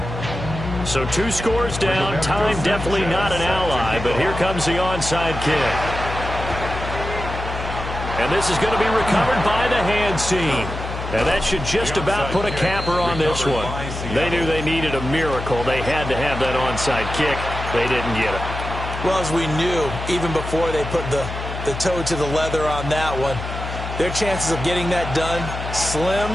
So 2 scores down. Time definitely not an ally. But here comes the onside kick. And this is going to be recovered by the hands team. And that should just about put a capper on this one. They knew they needed a miracle. They had to have that onside kick. They didn't get it. Well, as we knew, even before they put the toe to the leather on that one, their chances of getting that done, slim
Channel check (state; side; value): noise; left; hum, 7 dB below the sound